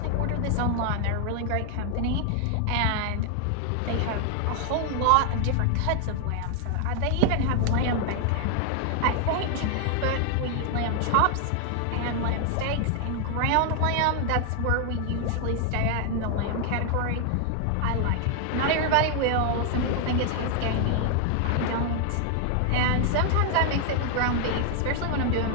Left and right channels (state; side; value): different; both; correlation 0.00